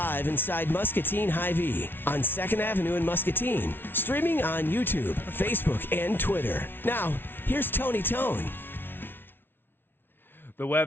inside Muscatine Hy-Vee on 2nd Avenue in Muscatine, streaming on YouTube, Facebook, and Twitter. Now, here's Tony Tone. The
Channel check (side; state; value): right; late; 0.10 ms